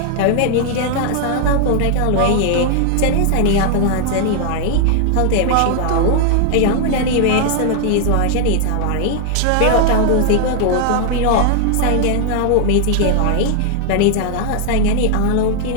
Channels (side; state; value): both; different; correlation 0.00